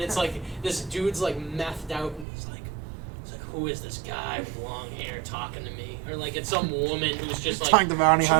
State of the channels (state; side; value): drops out; left; at 2.2 s